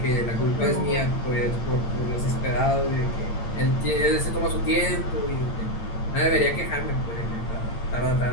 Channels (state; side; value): late; right; 8.7 ms